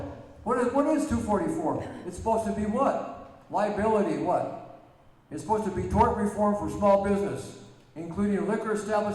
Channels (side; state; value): both; identical; correlation 1.00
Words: What is 244? It's supposed to be what? Liability, what? It's supposed to be tort reform for small business, including liquor